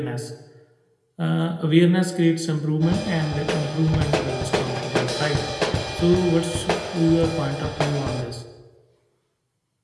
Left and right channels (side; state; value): both; identical; correlation 1.00